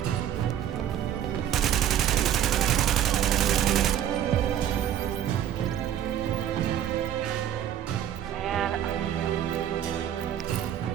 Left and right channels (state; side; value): quieter; left; 10.4 dB